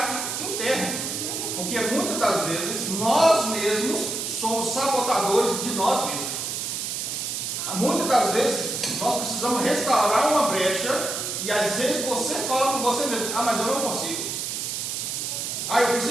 interno, porque muitas das vezes nós mesmos somos sabotadores de nós mesmos. Muitas das vezes nós precisamos restaurar uma brecha e às vezes você fala com você mesmo: mas eu não consigo. Eu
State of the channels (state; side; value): noise; right; hiss, 3 dB below the sound